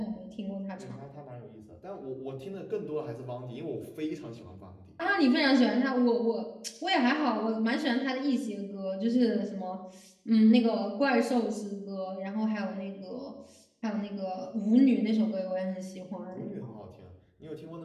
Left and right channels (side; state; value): both; identical; correlation 1.00